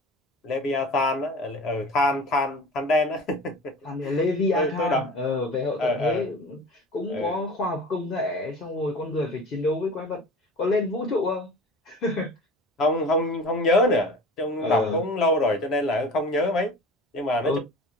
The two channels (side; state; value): both; normal; correlation 0.38